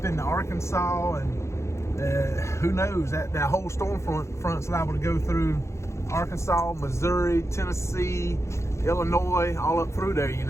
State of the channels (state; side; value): late; right; 0.14 ms